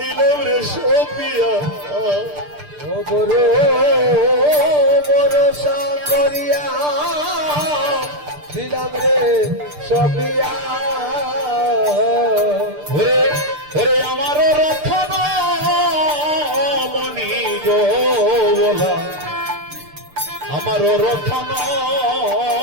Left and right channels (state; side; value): late; left; 6.7 ms